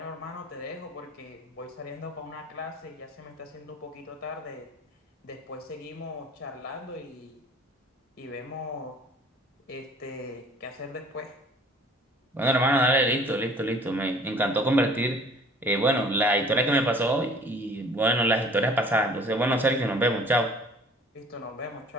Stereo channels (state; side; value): normal; both; correlation 0.51